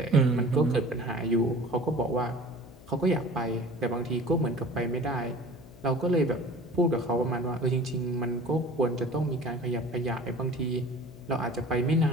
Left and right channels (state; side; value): noise; left; hum, 20 dB below the sound